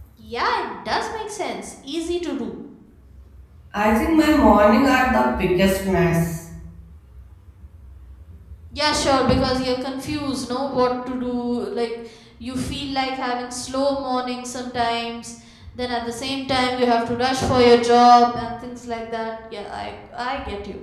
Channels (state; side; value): identical; both; correlation 1.00